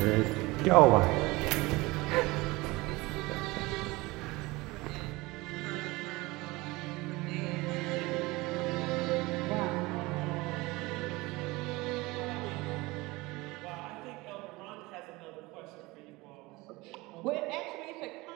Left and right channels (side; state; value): left; quieter; 22.1 dB